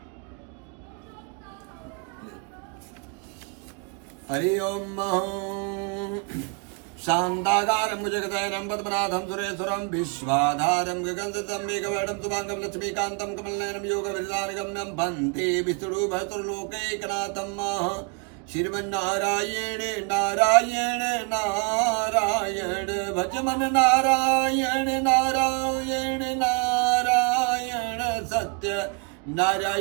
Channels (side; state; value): left; quieter; 36.3 dB